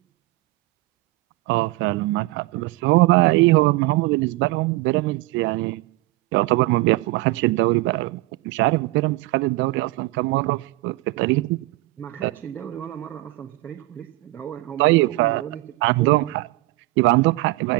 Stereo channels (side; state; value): left; quieter; 20.0 dB